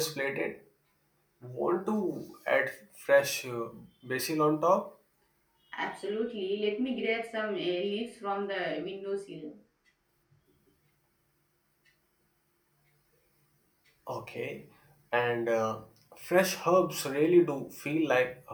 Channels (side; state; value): both; identical; correlation 1.00